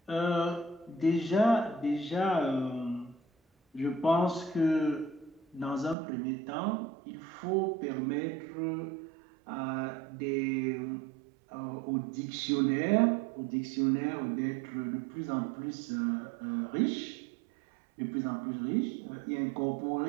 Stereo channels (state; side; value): drops out; left; at 6.0 s